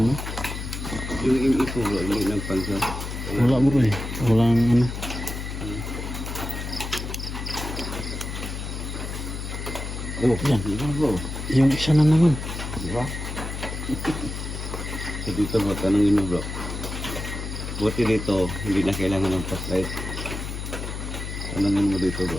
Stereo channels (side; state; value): left; noise; hum, 6 dB below the sound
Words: no. Yung imi ko bro, hindi nagpansin. Wala bro eh. Walang Oh, yan. diba bro? Yung isa na naman. Diba? So dito bro, tanongin mo bro. Buti dito, hindi na kailangan ng flashlight. Tanongin mo dito